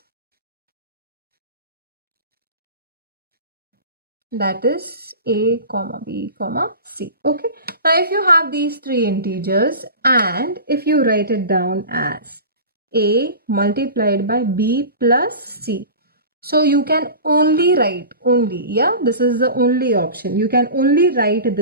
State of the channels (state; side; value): inverted; both; correlation -0.34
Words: that is a comma b comma c. Okay, now if you have these three integers and if you write it down as a multiplied by b plus c, so you can only write this is the only option, you can only write